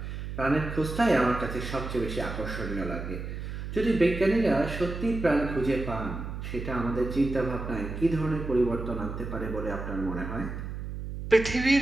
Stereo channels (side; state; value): right; noise; hum, 7 dB below the sound